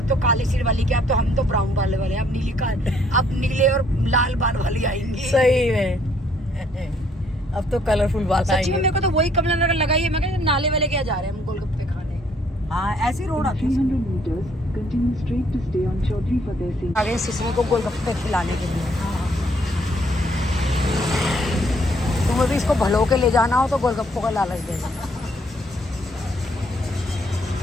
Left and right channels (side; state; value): both; normal; correlation 0.66